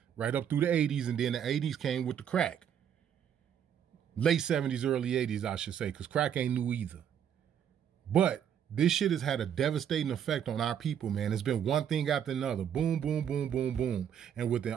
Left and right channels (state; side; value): quieter; left; 8.9 dB